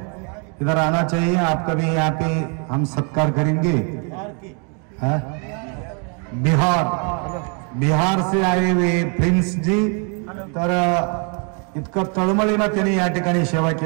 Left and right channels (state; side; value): quieter; left; 37.4 dB